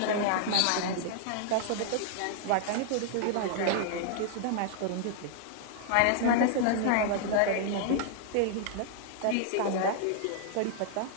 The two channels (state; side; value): different; both; correlation -0.01